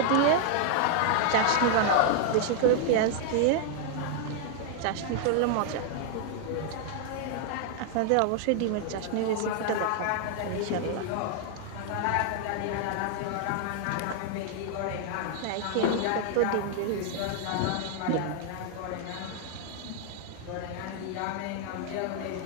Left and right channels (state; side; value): different; both; correlation 0.00